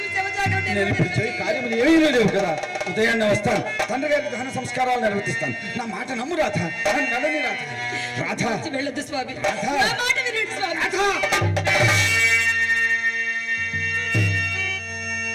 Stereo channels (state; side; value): identical; both; correlation 1.00